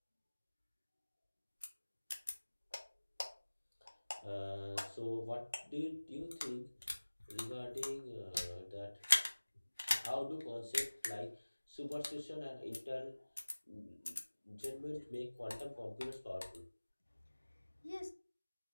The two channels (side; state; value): both; inverted; correlation -1.00